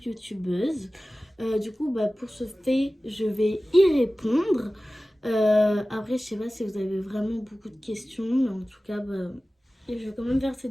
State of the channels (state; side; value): normal; both; correlation 0.97